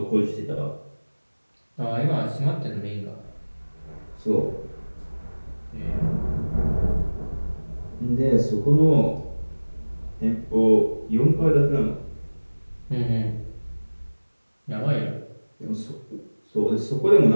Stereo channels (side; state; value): both; inverted; correlation -1.00